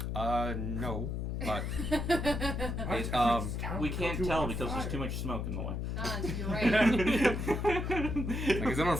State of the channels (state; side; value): noise; left; hum, 2 dB below the sound